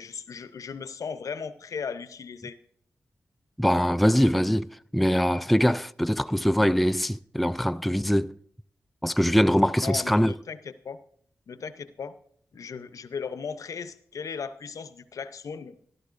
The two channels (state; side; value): normal; both; correlation 0.97